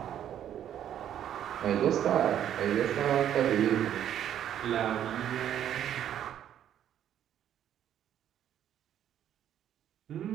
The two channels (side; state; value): left; quieter; 10.4 dB